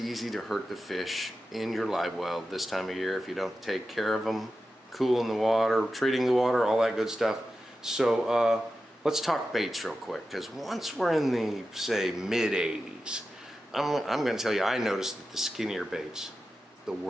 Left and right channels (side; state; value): both; normal; correlation 0.92